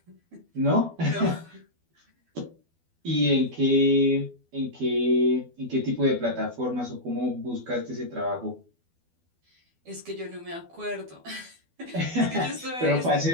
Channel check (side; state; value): left; late; 12 ms